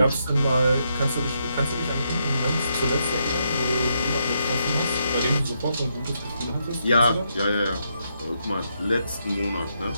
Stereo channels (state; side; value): inverted; both; correlation -0.79